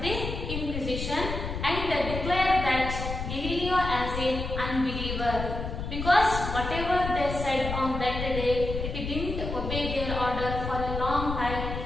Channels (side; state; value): left; noise; rumble, 5 dB below the sound